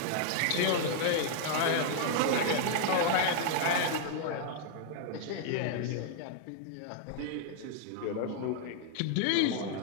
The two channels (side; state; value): both; different; correlation -0.01